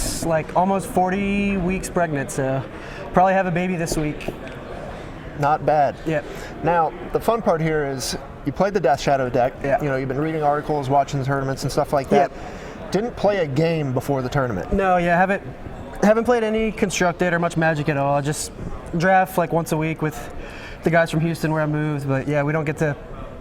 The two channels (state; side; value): identical; both; correlation 1.00